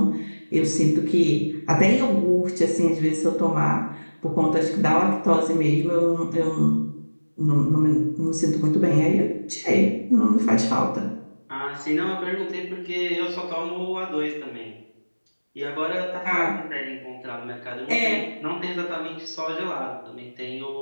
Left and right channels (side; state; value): both; inverted; correlation -1.00